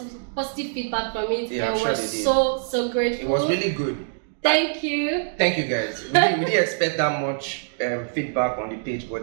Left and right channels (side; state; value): left; silent; digital silence